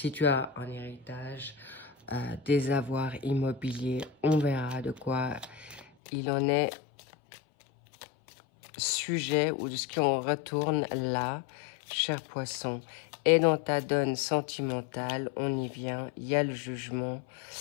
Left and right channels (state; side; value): drops out; right; at 5.9 s